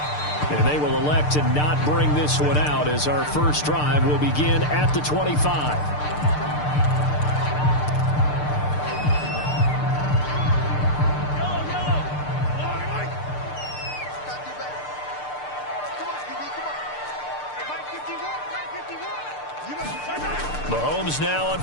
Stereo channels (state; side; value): late; right; 6.7 ms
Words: And they will elect to not bring this one out as our first drive will begin at the 25. Mahomes now on